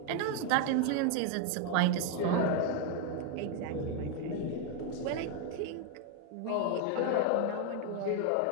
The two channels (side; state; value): both; different; correlation 0.01